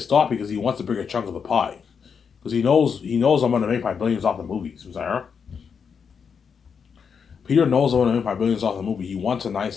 off because he wants a bigger chunk of the pie. Because he knows I'm going to make my billions off the movies. Peter knows I'm going to make my billions off the movie. He wants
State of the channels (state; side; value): quieter; right; 6.4 dB